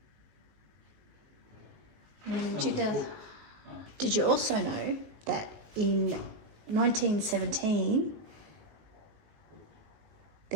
And in 2000, did you also know that in 1917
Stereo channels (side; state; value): left; late; 19 ms